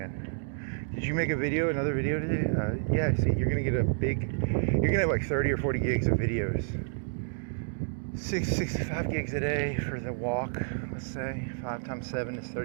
Did you make another video today? Yeah. See, you're gonna get you're gonna have like 30 or 40 gigs of videos. 65 gigs a day for the walk. Let's say 5 times 7 is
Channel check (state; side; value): silent; left; digital silence